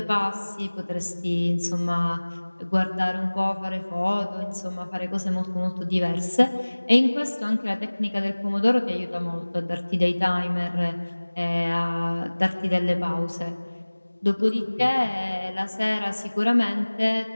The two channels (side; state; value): both; inverted; correlation -1.00